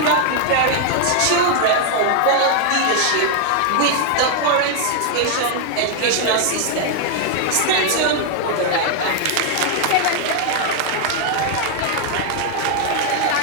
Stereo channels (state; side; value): different; both; correlation 0.00